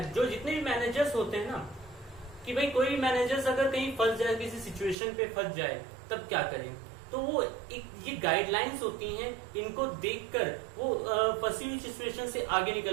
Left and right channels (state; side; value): drops out; left; at 5.0 s